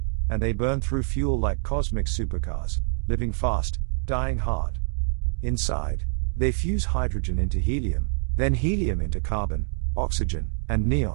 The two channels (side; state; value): left; silent; digital silence